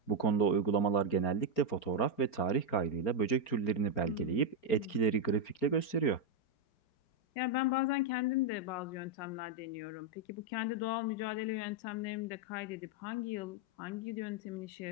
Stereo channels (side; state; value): right; late; 4.4 ms